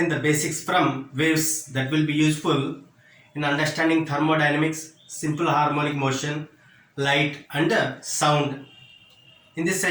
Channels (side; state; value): both; identical; correlation 1.00